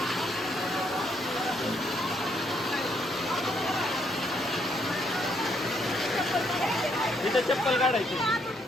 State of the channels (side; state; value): both; normal; correlation 0.72